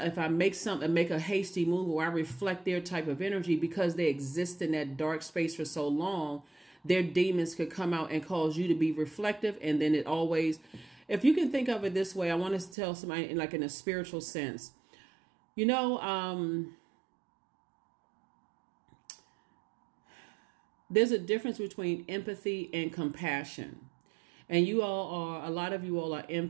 I make a hasty move, or I reflect their type of energy, because they exist in that dark space for so long, their demons could come out and cause you to be reflective. And then it always, if you can think of it this way, I want to tell somebody in a spiritual sense, you know, there's a difference between empathy and compassion. And a lot of you all are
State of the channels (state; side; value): drops out; left; at 12.8 s